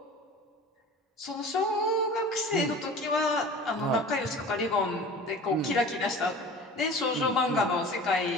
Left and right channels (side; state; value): both; normal; correlation 0.39